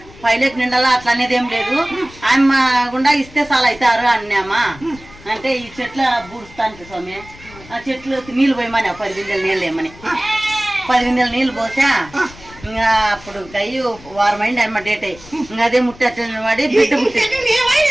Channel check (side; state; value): left; noise; rumble, 20 dB below the sound